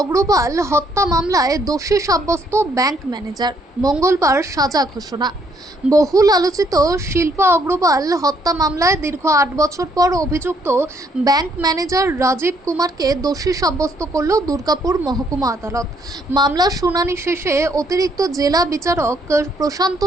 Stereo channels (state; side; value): normal; both; correlation 0.69